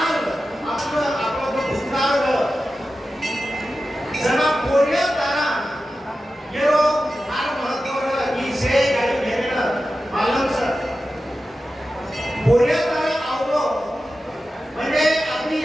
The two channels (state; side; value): normal; both; correlation 0.93